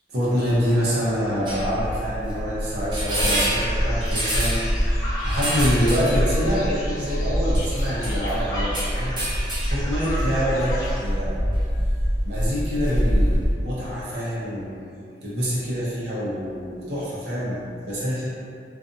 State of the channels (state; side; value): normal; both; correlation 0.72